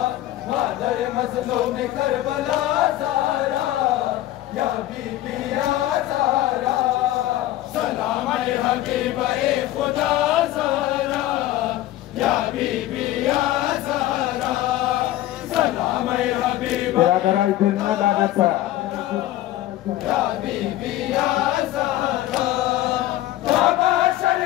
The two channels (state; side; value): quieter; right; 14.7 dB